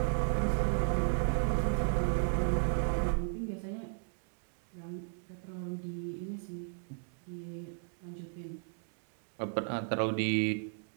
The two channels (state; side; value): silent; left; digital silence